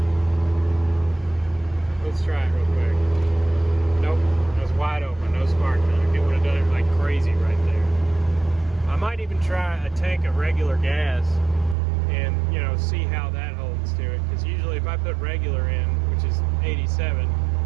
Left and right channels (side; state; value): left; drops out; at 11.8 s